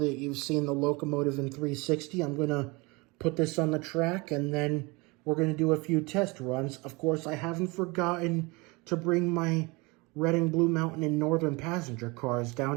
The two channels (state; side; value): quieter; left; 26.0 dB